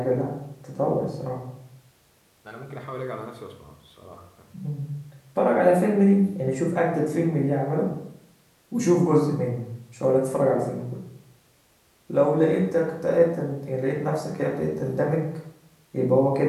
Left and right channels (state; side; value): identical; both; correlation 1.00